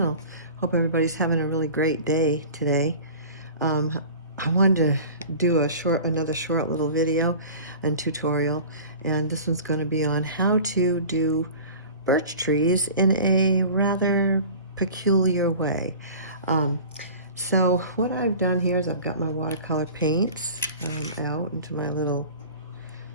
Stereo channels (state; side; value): inverted; both; correlation -0.40